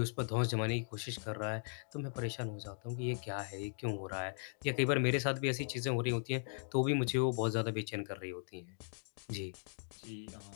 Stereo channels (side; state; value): right; silent; digital silence